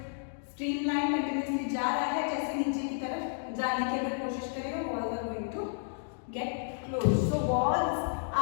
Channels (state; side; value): silent; right; digital silence